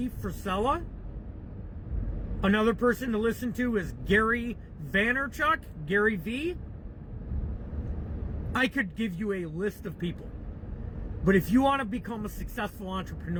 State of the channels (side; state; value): both; identical; correlation 1.00